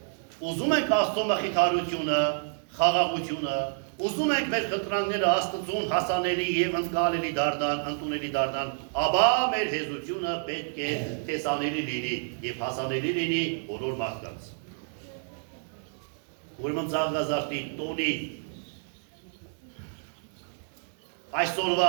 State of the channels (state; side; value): silent; left; digital silence